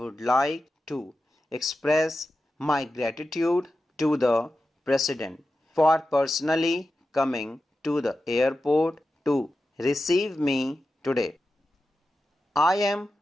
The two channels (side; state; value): both; normal; correlation 0.92